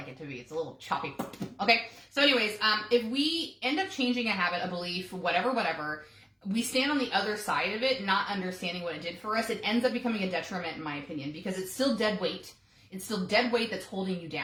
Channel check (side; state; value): both; identical; correlation 1.00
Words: it to be. It's a little choppy. Okay. So anyways, if we end up changing a habit, a belief, whatever, we stand on the other side of it, not understanding what it did for us. It ends up becoming a detriment, in my opinion, because it's still dead weight. It's still dead weight that's holding you